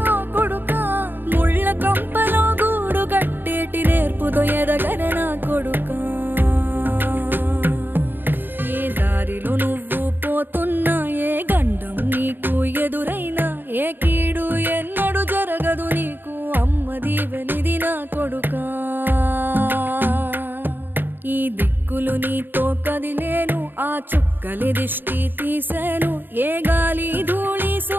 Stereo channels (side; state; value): left; late; 0.094 ms